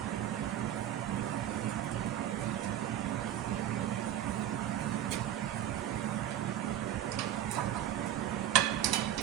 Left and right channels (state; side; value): quieter; left; 11.4 dB